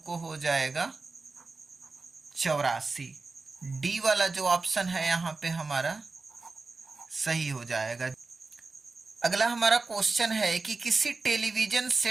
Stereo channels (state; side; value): quieter; left; 3.8 dB